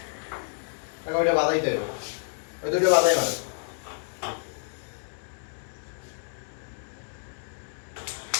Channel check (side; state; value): right; silent; digital silence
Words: কাকা ওইটা বাধাইতে হবে ওই দুটো বাধাই মারে